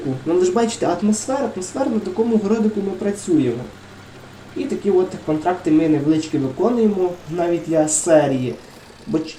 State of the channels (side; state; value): both; identical; correlation 1.00